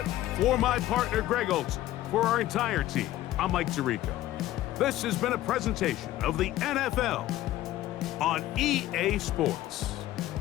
for my partner, Greg Olson. For our entire team, I'm Mike Tirico. This has been a presentation of the NFL on EA Sports.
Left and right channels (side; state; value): right; quieter; 14.7 dB